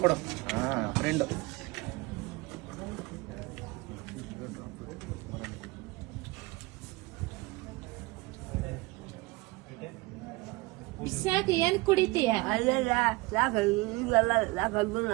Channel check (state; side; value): quieter; left; 22.9 dB